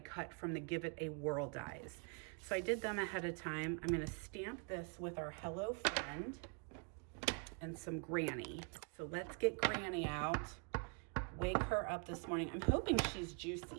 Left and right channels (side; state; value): left; quieter; 37.4 dB